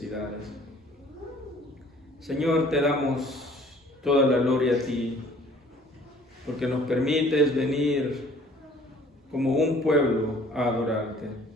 Señor, te damos toda la gloria a ti, porque nos permites venir como un pueblo a adorarte.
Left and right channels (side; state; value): both; normal; correlation 0.54